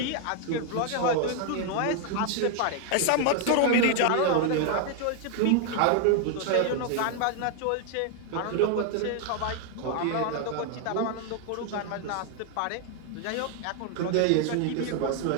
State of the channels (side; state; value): both; different; correlation 0.00